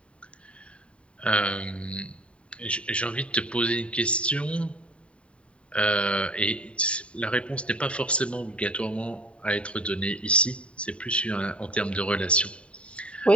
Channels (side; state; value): right; late; 0.061 ms